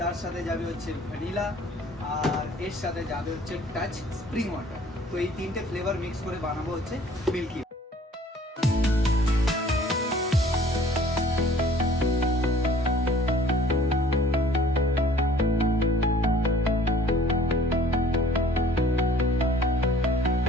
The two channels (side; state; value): both; normal; correlation 0.53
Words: তার সাথে যাবে হচ্ছে ভ্যানিলা, আর এর সাথে যাবে হচ্ছে টাচ স্প্রিং ওয়াটার। তো এই তিনটে ফ্লেভার মিক্স করে বানাবো হচ্ছে মিল্কি।